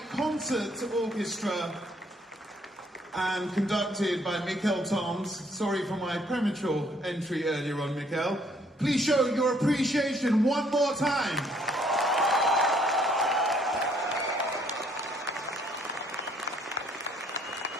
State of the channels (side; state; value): both; normal; correlation 0.65